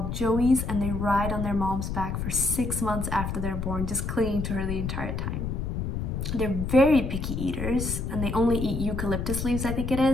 joeys, and they ride on their mom's back for 6 months after they're born, just clinging to her the entire time. They're very picky eaters, and they only eat eucalyptus leaves, I think it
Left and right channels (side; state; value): left; noise; rumble, 3 dB below the sound